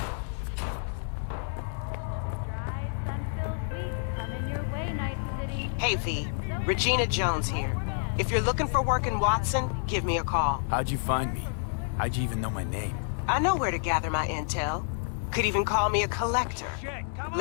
Hey V, Regina Jones here. If you're looking for work in Watson, give me a call. How'd you find me? How'd you even know my name? I know where to gather my intel. Could even call me a collector.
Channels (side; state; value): right; silent; digital silence